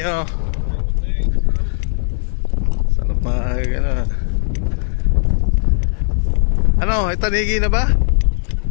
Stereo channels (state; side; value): silent; right; digital silence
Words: Sarap ano. Ano, ay tanigi na ba?